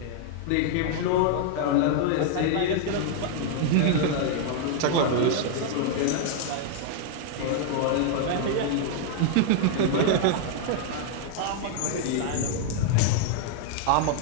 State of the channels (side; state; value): both; different; correlation -0.01